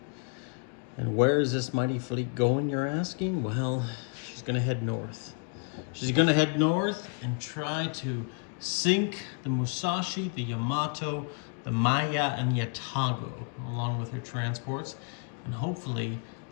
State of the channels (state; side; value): quieter; right; 39.2 dB